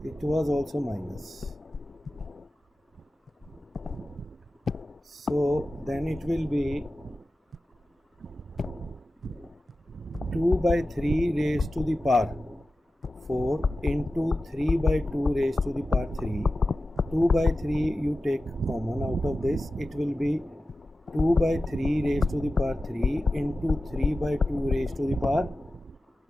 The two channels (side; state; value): both; normal; correlation 0.94